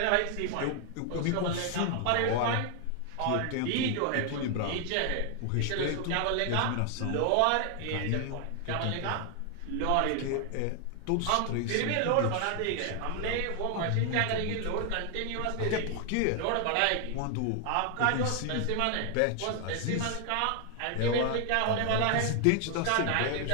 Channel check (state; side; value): different; both; correlation 0.00